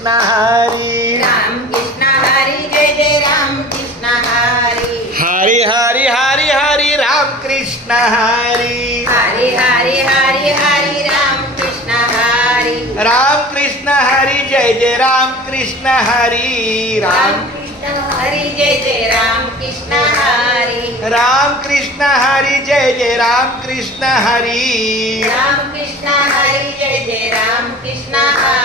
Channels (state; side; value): normal; both; correlation 0.40